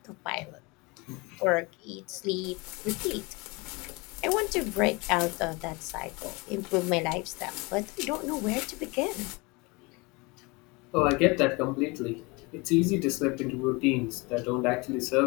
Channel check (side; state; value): right; quieter; 26.5 dB